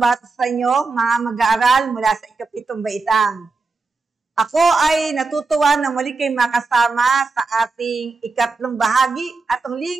sa inyo, mga mag-aaral mula sa ikapitong baitang. Ako ay natutuwa na muli kayo makasama sa ating ikatlong bahagi at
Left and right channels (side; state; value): left; quieter; 4.0 dB